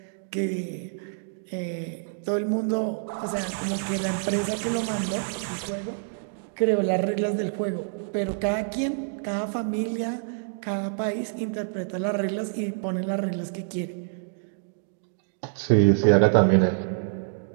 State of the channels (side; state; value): left; silent; digital silence